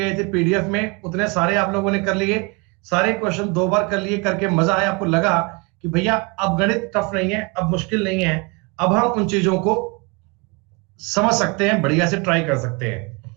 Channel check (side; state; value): left; quieter; 29.4 dB